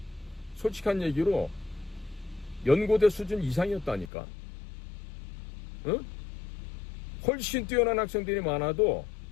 솔직한 얘기로 연고대 수준 이상이었다니까. 응? 훨씬 뛰어난 학생들이 많아도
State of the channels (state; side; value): drops out; right; at 4.1 s